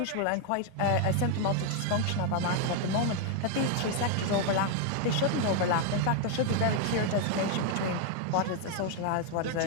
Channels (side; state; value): both; different; correlation 0.00